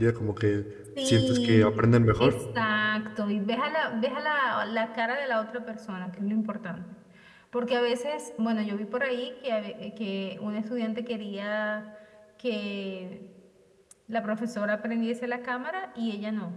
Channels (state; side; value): identical; both; correlation 1.00